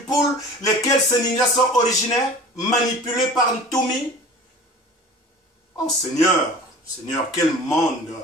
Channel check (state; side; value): normal; both; correlation 0.41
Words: lesquels ces ninjas sont originaires, manipulés par Ntoumi? Oh Seigneur, Seigneur, quel monde!